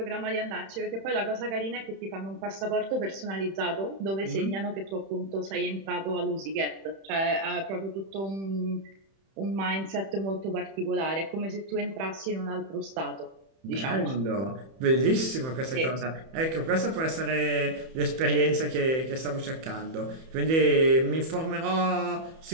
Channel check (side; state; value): left; late; 31 ms